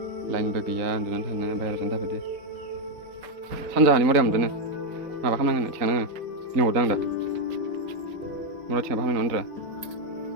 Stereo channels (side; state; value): left; late; 3.8 ms